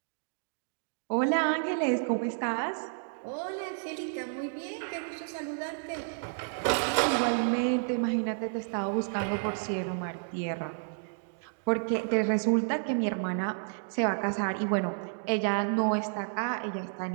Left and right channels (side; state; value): left; silent; digital silence